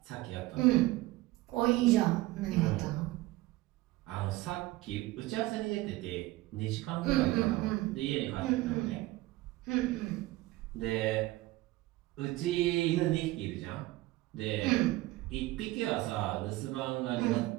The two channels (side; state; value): left; quieter; 18.6 dB